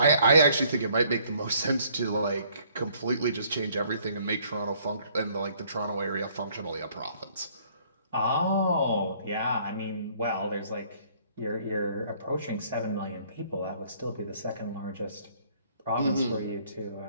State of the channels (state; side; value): inverted; both; correlation -0.62